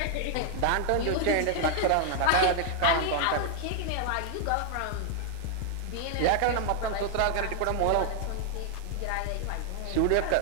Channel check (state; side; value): different; both; correlation 0.00